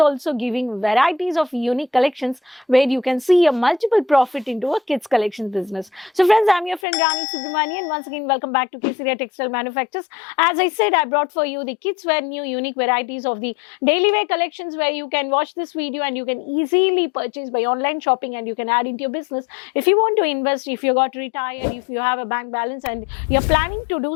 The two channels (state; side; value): drops out; right; at 6.8 s